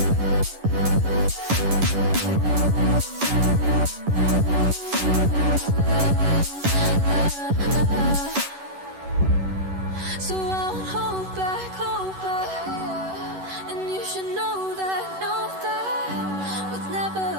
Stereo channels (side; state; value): left; late; 11 ms